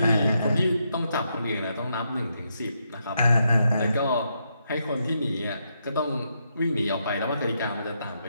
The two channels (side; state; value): both; inverted; correlation -0.80